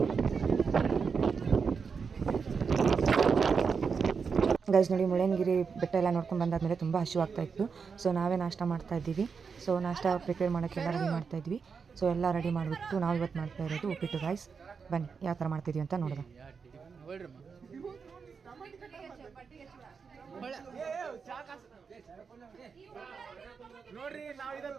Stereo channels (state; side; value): quieter; left; 5.6 dB